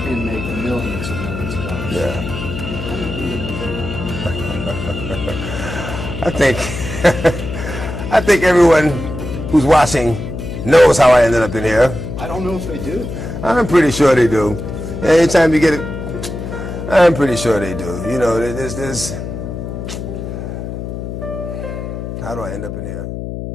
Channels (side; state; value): left; noise; hum, 7 dB below the sound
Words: And made millions of dollars. Yeah. I think everyone who's watching knows how I ended up in here. I don't know if they do. I'm pretty sure they do. Anytime you get it, I'm pretty sure they do. You know, there's how do I end up in here?